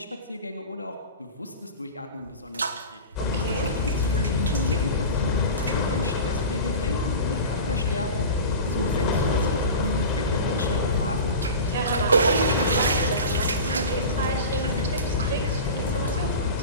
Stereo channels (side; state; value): both; inverted; correlation -0.31